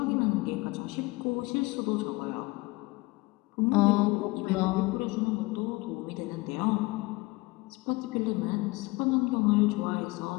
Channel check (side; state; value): right; quieter; 22.9 dB